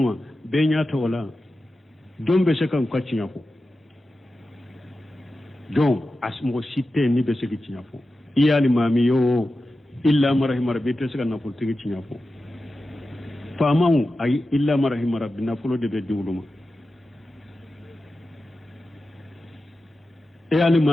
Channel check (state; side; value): normal; both; correlation 0.92